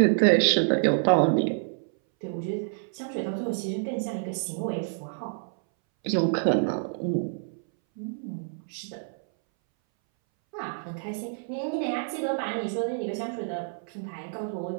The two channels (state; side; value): silent; left; 59 dB below the other